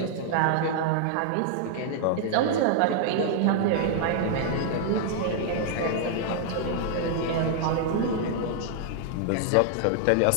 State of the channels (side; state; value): both; different; correlation 0.00